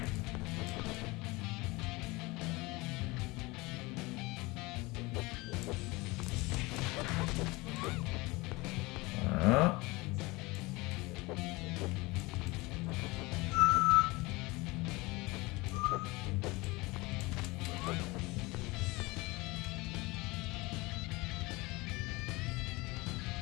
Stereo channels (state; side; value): quieter; right; 22.8 dB